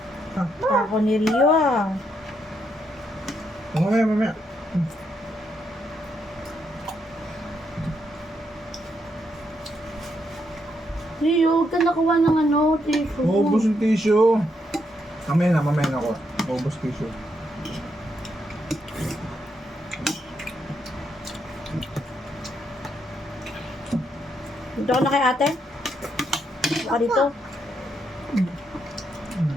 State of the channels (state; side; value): normal; both; correlation 0.78